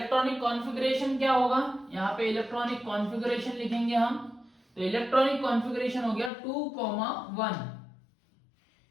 कॉन्फ़िगरेशन क्या होगा, यहाँ पे इलेक्ट्रॉनिक कॉन्फ़िगरेशन लिखेंगे हम। तो इलेक्ट्रॉनिक कॉन्फ़िगरेशन हो गया 2,1।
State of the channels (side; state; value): right; drops out; at 6.3 s